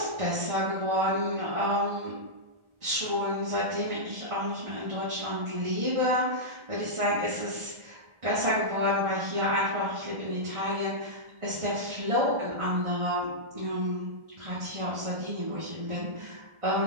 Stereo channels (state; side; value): late; left; 1.4 ms